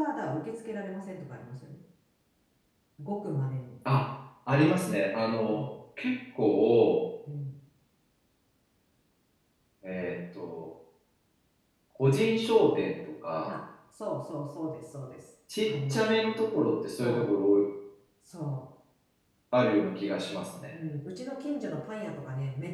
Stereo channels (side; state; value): both; identical; correlation 1.00